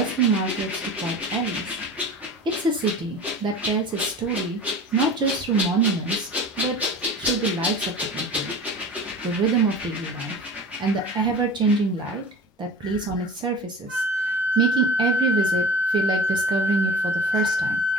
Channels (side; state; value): both; normal; correlation 0.37